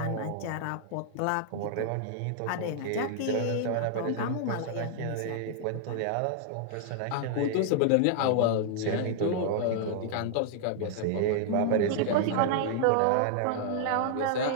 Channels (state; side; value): different; both; correlation -0.01